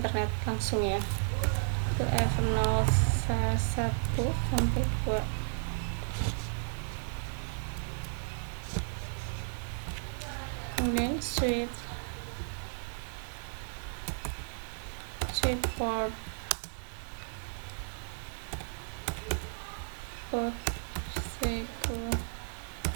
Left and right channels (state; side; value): silent; left; digital silence